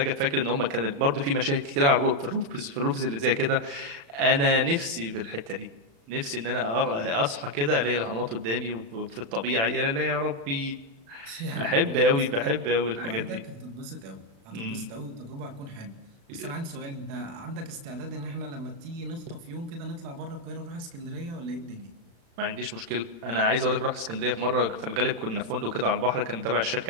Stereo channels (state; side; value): late; left; 35 ms